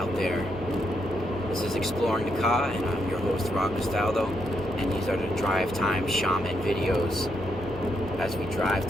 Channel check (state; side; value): normal; both; correlation 0.79